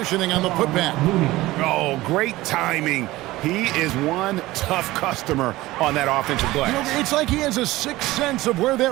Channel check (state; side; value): quieter; left; 18.1 dB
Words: on the putback. Oh, great timing. He is one tough customer on that offensive glass. You know, it's like he has a sixth sense of where